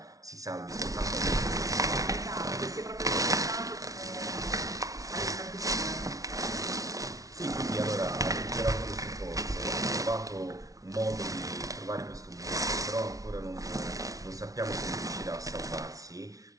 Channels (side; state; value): left; late; 0.17 ms